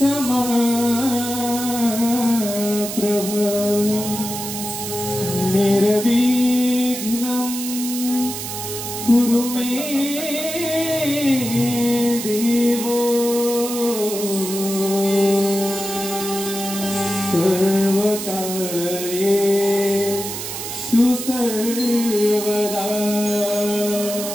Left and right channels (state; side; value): noise; right; hiss, 6 dB below the sound